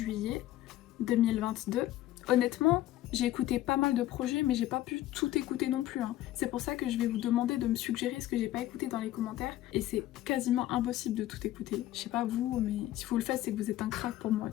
2022. Honnêtement, j'ai écouté pas mal de projets mais j'ai pas pu tout écouter non plus. C'est pour ça que je vais vous demander de me suggérer ce que j'ai pas écouté dans les commentaires et c'est quasiment impossible de tout écouter. Je sais pas vous, mais si vous le faites c'est que vous êtes un crack pour moi,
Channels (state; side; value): quieter; right; 14.5 dB